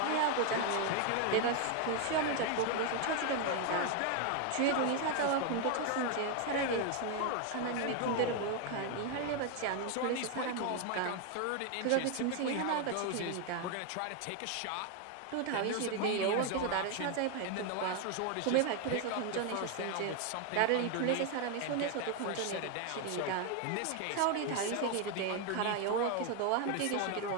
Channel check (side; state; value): both; different; correlation 0.01